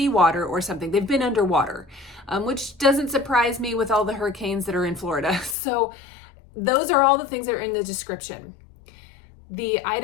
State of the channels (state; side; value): drops out; right; at 5.6 s